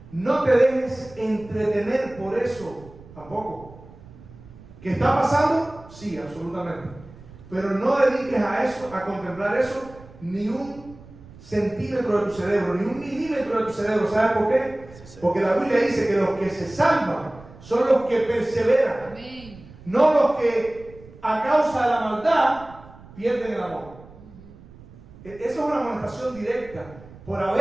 no te dejes entretener por eso tampoco. ¿Qué está pasando? Sí, absolutamente. Pero no dediques a eso, a contemplar eso, ni un centímetro de tu cerebro, ni un milímetro de tu cerebro. ¿Sabes por qué? Porque la Biblia dice que los que se salvan son los que perseveran. Amén. No los que a causa de la maldad pierden el amor. Esa es una amonestación directa por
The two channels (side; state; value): right; noise; rumble, 20 dB below the sound